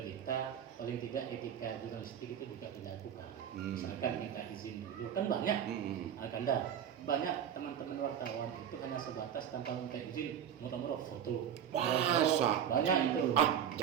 paling tidak etika jurnalistik itu juga dilakukan. Misalkan minta izin dulu, kan banyak. Banyak teman-teman wartawan itu hanya sebatas tanpa minta izin, murah-murah foto. Banyak itu.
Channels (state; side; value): quieter; left; 9.0 dB